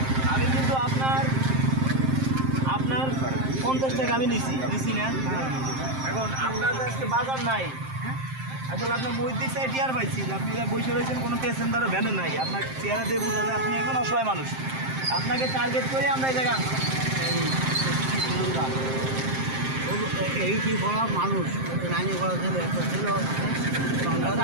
আমি কিন্তু আপনার 50 টাকা আমি নিছি না এখন আপনার আজকে বাজার নাই আসলে আপনার বই দিক সাইড টিয়ার পাইছি যে আপনি যা বসে রয়েছেন কোনো প্যাসেঞ্জারও ভ্যানে নাই আপনার চেহারা দিয়ে বুঝা যায় আপনি একজন অসহায় মানুষ আপনাকে টার্গেট করে আমরা এই জায়গা আনছি। এই কি বলা মানুষ লাইনে করা ছেলে একটা ছিল আচ্ছা,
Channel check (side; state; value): left; late; 7.6 ms